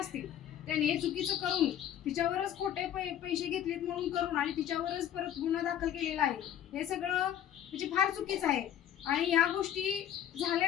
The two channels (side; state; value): right; quieter; 10.5 dB